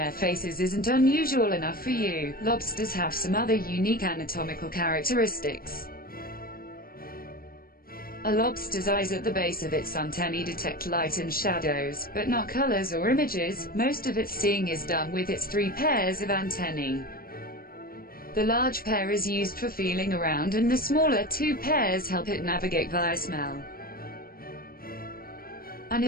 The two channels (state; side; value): late; right; 0.43 ms